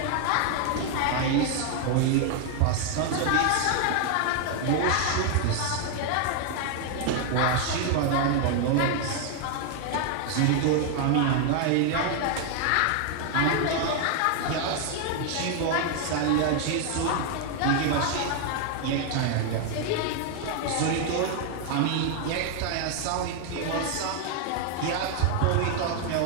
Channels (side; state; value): both; different; correlation 0.00